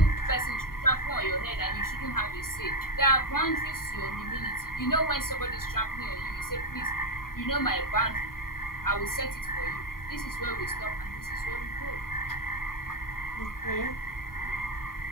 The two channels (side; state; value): right; late; 0.92 ms